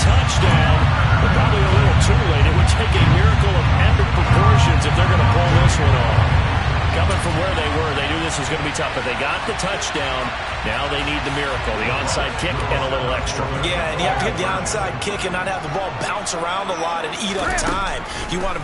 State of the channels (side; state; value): both; identical; correlation 1.00